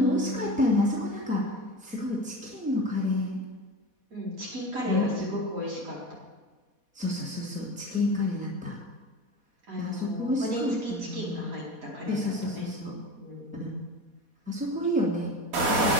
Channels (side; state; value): left; late; 4.2 ms